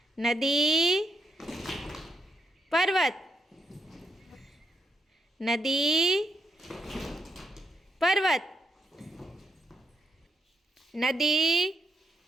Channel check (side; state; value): both; normal; correlation 0.78